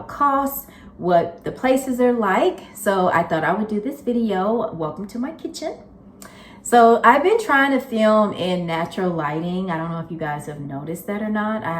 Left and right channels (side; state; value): both; identical; correlation 1.00